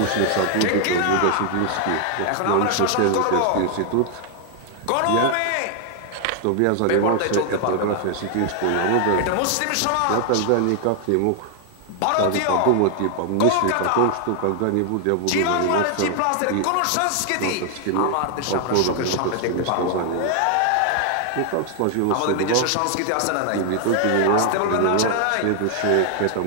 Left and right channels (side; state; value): both; different; correlation 0.00